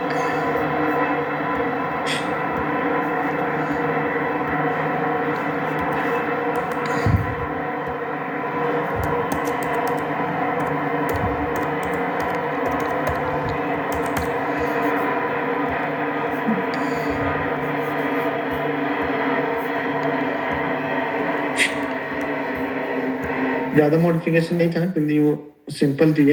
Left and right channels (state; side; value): identical; both; correlation 1.00